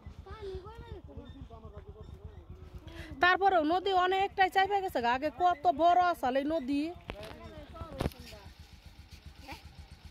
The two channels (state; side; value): identical; both; correlation 1.00